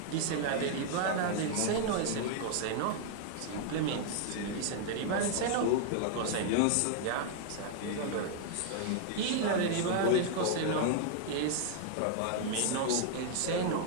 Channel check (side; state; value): both; different; correlation 0.00